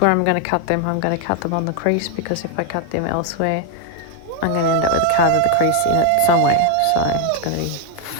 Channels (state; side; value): different; both; correlation 0.01